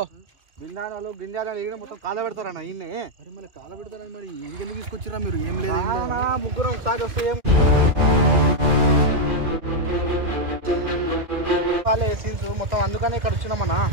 బిందాలు గింజాలు మొత్తం కాల పెడతారన్న ఈయనే. అరే మళ్ళీ కాల పెడతారని మరి ఇది ఎందుకు తీసుకొచ్చిరా మీరు? ఏం లేదు ముగ్గురు ఒకసారి వస్తే మొత్తం అందుకని ఇక్కడ వచ్చినామన్నా.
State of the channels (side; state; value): left; late; 2.3 ms